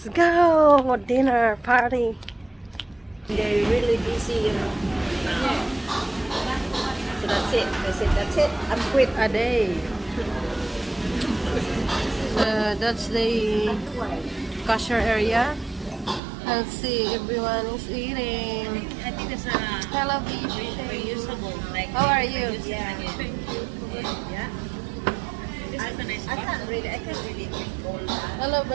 go dinner party. They're really busy, you know. So that's it. That's it. I'm quit a day. That's the cashier area. I'll see everyone is eating. I think there's a Hello, Beach. reusable. Like, How are you? Yeah. Yeah. This is a nice I can't really drink all that Hello,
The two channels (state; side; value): drops out; left; at 16.2 s